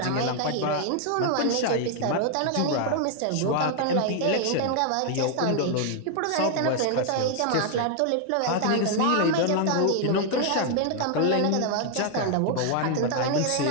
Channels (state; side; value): different; both; correlation 0.00